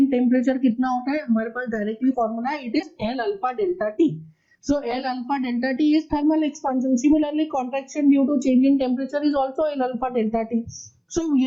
temperature कितना होता है, हमारे पास डायरेक्टली फॉर्मूला है, it is L alpha delta T. So L alpha delta T is thermal expansion. Similarly, contraction due to change in temperature is also L alpha delta T. So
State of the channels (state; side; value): identical; both; correlation 1.00